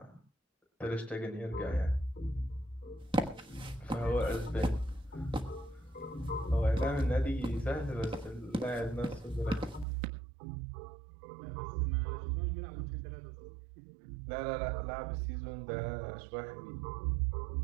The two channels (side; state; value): left; drops out; at 9.9 s